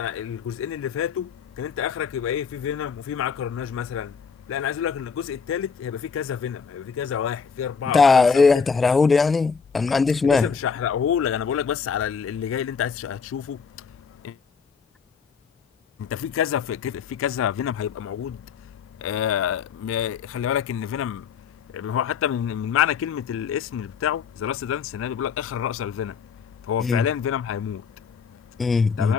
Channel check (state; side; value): quieter; right; 6.0 dB